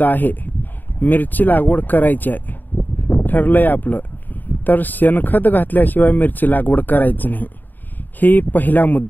आहे, मिरची लागवड करायची आहे, ठरलंय आपलं, तर शेणखत घातल्याशिवाय मिरची लागवड करायची नाही. ही पहिला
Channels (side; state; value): right; late; 0.089 ms